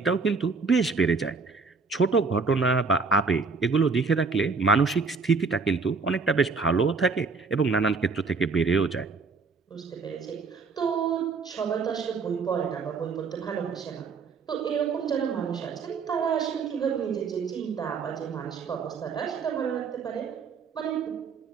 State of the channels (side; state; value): left; quieter; 4.7 dB